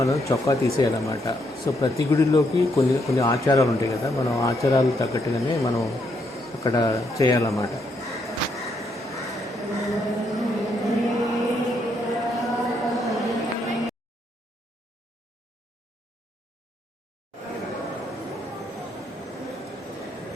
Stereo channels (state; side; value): normal; both; correlation 0.75